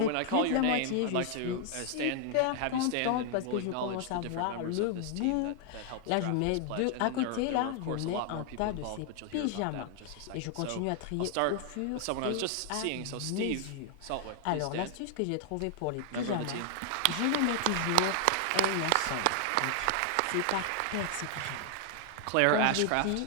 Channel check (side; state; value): both; different; correlation 0.00